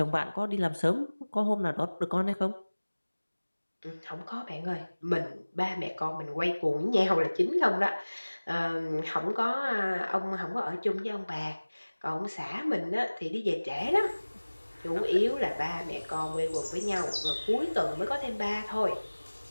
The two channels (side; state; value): both; inverted; correlation -1.00